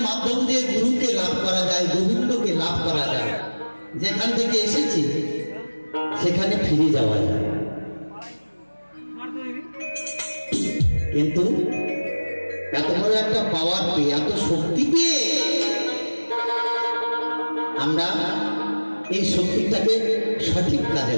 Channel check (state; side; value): inverted; both; correlation -1.00